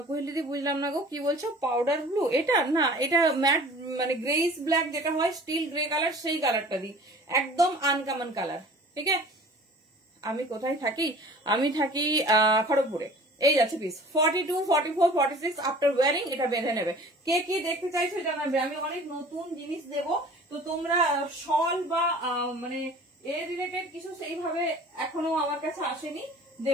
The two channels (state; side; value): normal; both; correlation 0.45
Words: কোহেলিদি বুঝলাম না গো, কি বলছো? পাউডার ব্লু এটা না, এটা ম্যাট মানে গ্রেইস ব্ল্যাক যেটা হয়, স্টিল গ্রে কালার, সেই কালারটা দিই। একদম আনকমন কালার, ঠিক আছে? আমি কোথায় থাকি? আমি থাকি খড়গপুরে। এই যাচ্ছে পিস 42, 44, 46 আফটার ওয়ারিং এটা বেঁধে নেবে। কে কি দেখতে চাইছো জানাবে, আমি অনেক নতুন জিনিস দেব। তো তোমরা শল বা মানে এ রিলেটেড কিছু সেইভাবে এখনো আমার কাছে আসেনি,